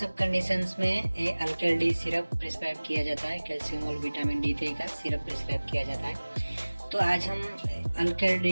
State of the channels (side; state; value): both; inverted; correlation -1.00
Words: कंडीशंस में ये अल्कल डी सिरप प्रिस्क्राइब किया जाता है। कैल्शियम और विटामिन D3 का सिरप प्रिस्क्राइब किया जाता है। तो आज हम अल्कल